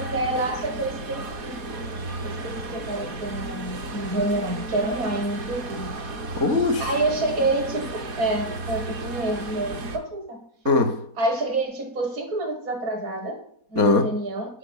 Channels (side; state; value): left; late; 4.2 ms